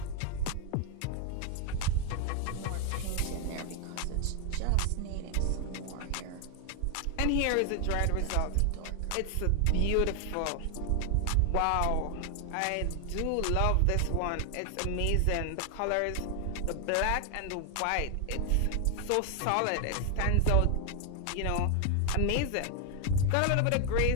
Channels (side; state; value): both; different; correlation 0.00